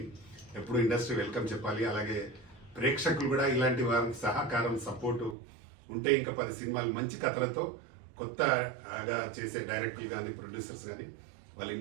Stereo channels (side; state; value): left; drops out; at 5.4 s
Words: ఎప్పుడు ఇండస్ట్రీ వెల్కమ్ చెప్పాలి. అలాగే ప్రేక్షకులు కూడా ఇలాంటి వారికి సహకారం, సపోర్టు ఉంటే ఇంకా 10 సినిమాలు మంచి కథలతో కొత్తగా చేసే డైరెక్టర్లు కానీ, ప్రొడ్యూసర్స్ కానీ వాళ్ళు